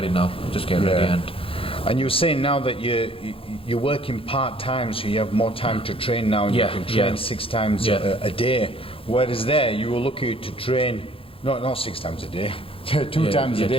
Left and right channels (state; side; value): late; right; 0.27 ms